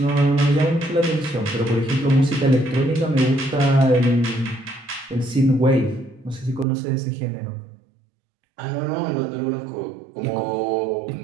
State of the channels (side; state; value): left; drops out; at 6.7 s